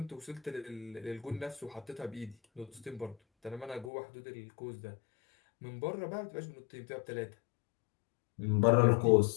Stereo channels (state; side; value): drops out; right; at 3.9 s